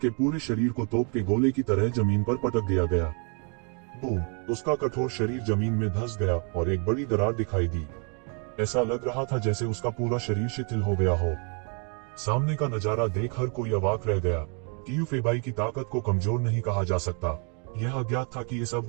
पूरे शरीर को तोप के गोले की तरह जमीन पर पटक दिया गया। बूम! उसका कठोर शरीर जमीन में धंस गया और एक बड़ी दरार दिखाई दी। ऐसा लग रहा था जैसे उसका पूरा शरीर शिथिल हो गया हो। सामने का नजारा देख हर कोई अवाक रह गया। क्यूफीबाई की ताकत को कमजोर नहीं कहा जा सकता। यह अज्ञात था कि इस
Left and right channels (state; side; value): quieter; left; 37.9 dB